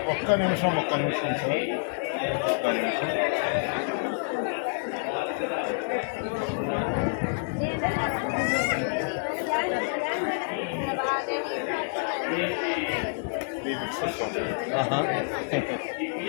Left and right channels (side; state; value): right; silent; digital silence